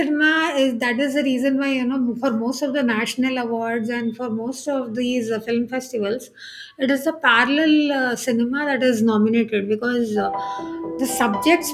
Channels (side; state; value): both; identical; correlation 1.00